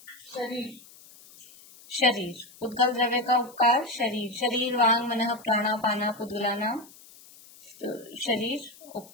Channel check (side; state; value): left; noise; hiss, 22 dB below the sound